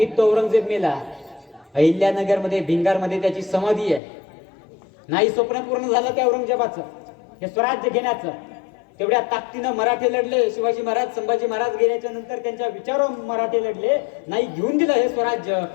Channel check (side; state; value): right; drops out; at 4.0 s